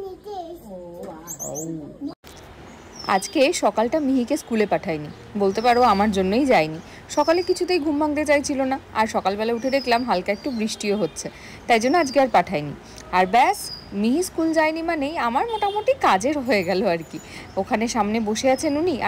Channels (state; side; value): identical; both; correlation 1.00